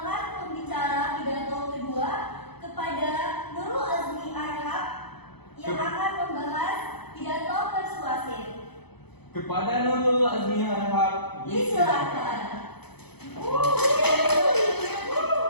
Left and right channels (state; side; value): late; right; 0.98 ms